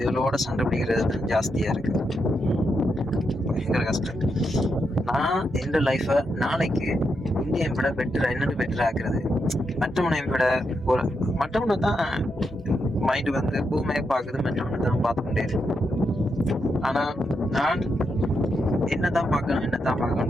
சண்டை பிடிக்கிறது தான் ஜாஸ்தியா இருக்கு. பயங்கர கஷ்டம். நான் எந்த லைஃபை நாளைக்கு இந்தியை விட என்னென்னு பெட்டர் ஆக்குறது. மற்றவனை தான் மைண்டு பூமையை பார்க்குது, மற்றவனை தான் பார்த்து கொண்டே இருக்கு. ஆனா நான் என்னதான்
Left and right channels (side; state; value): both; normal; correlation 0.83